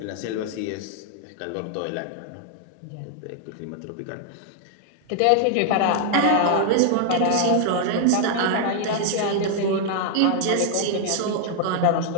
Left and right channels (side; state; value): both; different; correlation 0.00